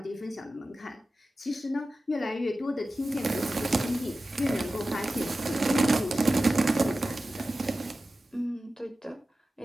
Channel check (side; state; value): both; normal; correlation 0.94